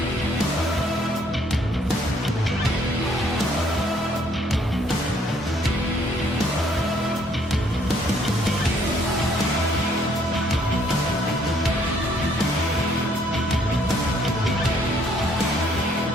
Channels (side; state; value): both; normal; correlation 0.65